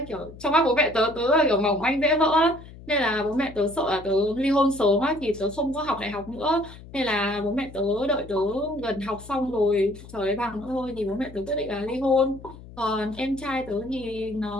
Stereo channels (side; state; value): left; noise; hum, 17 dB below the sound